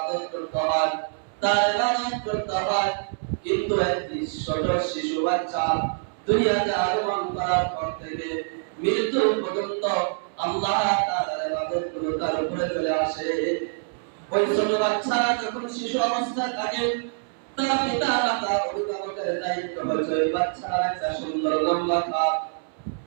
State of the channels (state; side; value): silent; left; 61 dB below the other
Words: করতে হয়, তার ইবাদত করতে হয়। কিন্তু একটি ছোট শিশু বাচ্চা দুনিয়াতে আগমন করার পর থেকে মৃত্যু পর্যন্ত আল্লাহ তাআলার ইবাদত গুলো তার উপরে চলে আসে। ওই ছোট বাচ্চা যখন শিশু অবস্থায় থাকে, তার পিতা মাতা অভিভাবকের দায়িত্ব হচ্ছে ওই বাচ্চার একটা সুন্দর লম্বা খাপ,